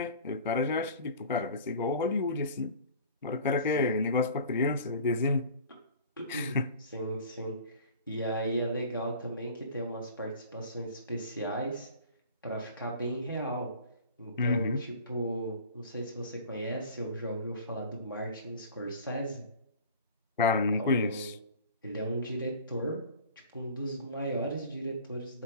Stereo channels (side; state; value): both; inverted; correlation -0.43